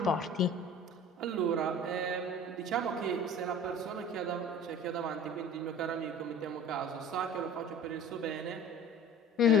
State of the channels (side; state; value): both; normal; correlation 0.42